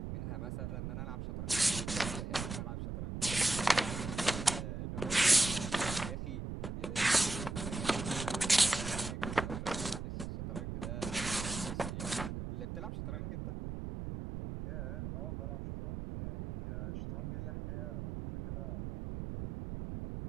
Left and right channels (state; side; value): noise; right; rumble, 5 dB below the sound